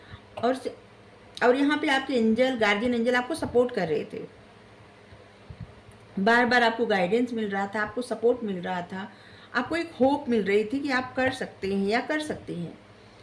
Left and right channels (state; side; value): identical; both; correlation 1.00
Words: और यहाँ पे आपके एंजल, गार्जियन एंजल आपको सपोर्ट कर रहे थे, बार बार आपको गाइडेंस मिल रहा था, आपको सपोर्ट मिल रहा था, आपको एक होप मिल रही थी कि आप कर सकते हैं या कर सकते हैं।